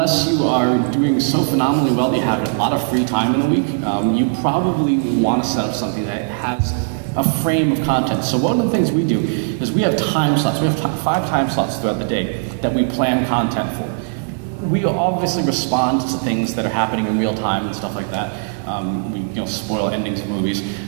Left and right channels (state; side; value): silent; left; digital silence